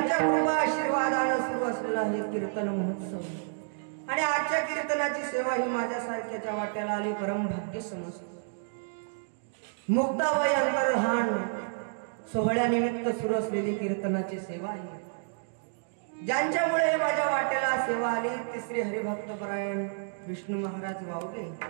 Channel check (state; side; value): silent; left; digital silence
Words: कृपा आशीर्वादाने सुरू असलेला हे कीर्तन महोत्सव आणि आजच्या कीर्तनाची सेवा ही माझ्यासारख्याच्या वाट्याला आली परम भाग्य समजतो। मुक्ताबाई अंतर्धान सोहळ्यानिमित्त सुरू असलेली कीर्तनाची सेवा आहे ज्यांच्यामुळे माझ्या वाट्याला सेवा आली ती श्री हरिभक्तपरायण विष्णू महाराज वावगे